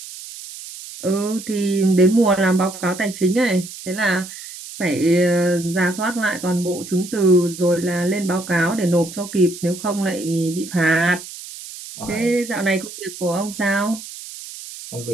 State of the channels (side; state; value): right; noise; hiss, 13 dB below the sound